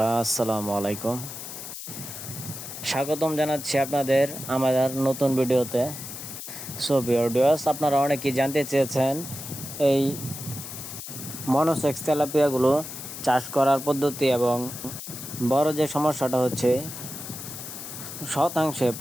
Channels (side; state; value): left; noise; hiss, 10 dB below the sound